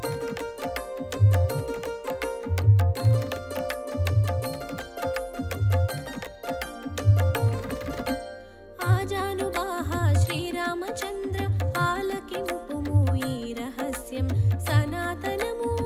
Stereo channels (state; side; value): identical; both; correlation 1.00